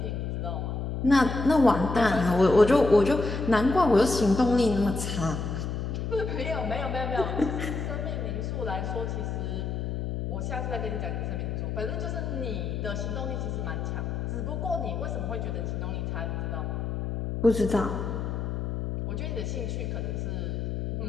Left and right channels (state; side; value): noise; left; hum, 3 dB below the sound